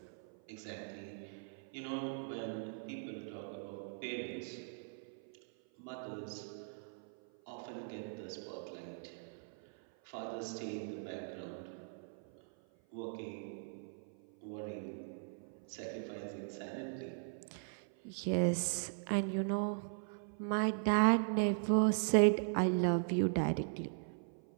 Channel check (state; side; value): silent; left; 51 dB below the other